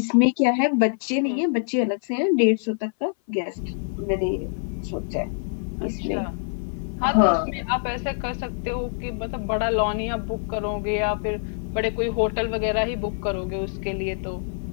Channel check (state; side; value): silent; right; 59 dB below the other